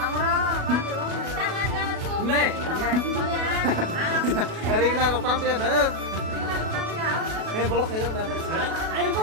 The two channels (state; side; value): late; left; 37 ms